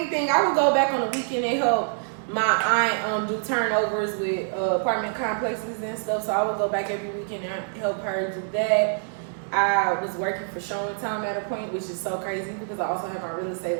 I would go back on the weekend and help my aunt do turnovers with apartment complexes and stuff. So I would go back every weekend and help her do that. I was working for Showing Time at a point, which is so crazy because I also have my real estate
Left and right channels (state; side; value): silent; left; digital silence